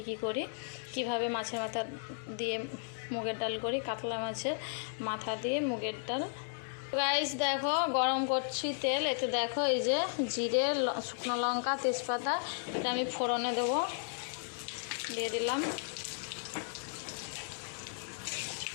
করি, কিভাবে মাছের মাথা দিয়ে মুগের ডাল করি, কাতলা মাছের মাথা দিয়ে মুগের ডাল। রাইস দেখো গরম করছি তেল, একটু দেখো এই যে জিরে, শুকনো লঙ্কা, তেজপাতা, এটা আমি ফোড়নে দেবো, দিয়ে দিলাম।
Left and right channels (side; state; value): right; silent; digital silence